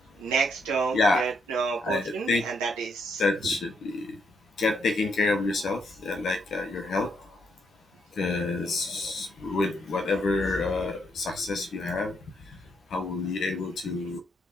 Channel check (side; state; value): both; normal; correlation 0.75